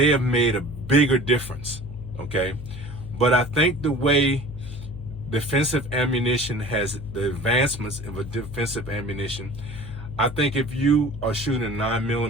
have made a bigger difference, okay? But I think the way defensive ammunition has, the advancements of a defensive ammunition, I think if you are shooting a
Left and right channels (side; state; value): left; noise; hum, 11 dB below the sound